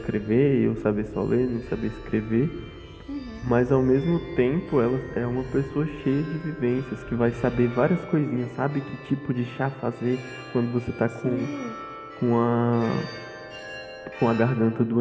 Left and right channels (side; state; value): both; identical; correlation 1.00